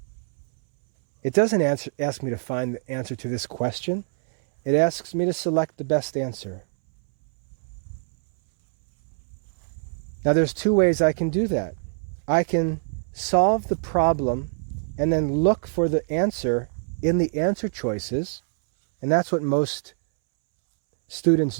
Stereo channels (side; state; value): left; silent; 62 dB below the other